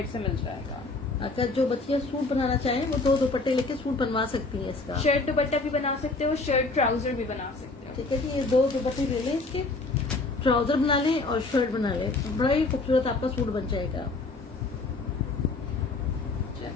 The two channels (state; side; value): quieter; right; 3.5 dB